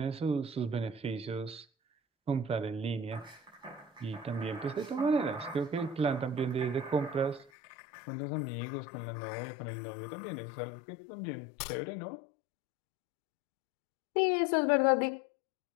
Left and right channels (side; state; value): right; drops out; at 7.5 s